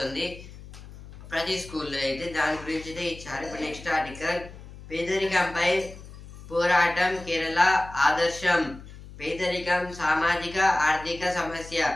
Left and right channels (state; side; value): noise; left; hum, 16 dB below the sound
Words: ప్రతి స్కూల్లో అయితే దాని గురించి అయితే ఇచ్చారు. ఇప్పుడు నెక్స్ట్ ఆర్టికల్, పేదరికంపై పోరాటం కేరళ ఆదర్శం. పేదరికం సామాజిక ఆర్థిక సమస్య,